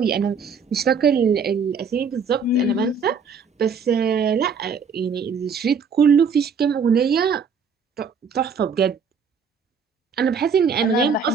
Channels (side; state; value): left; quieter; 5.5 dB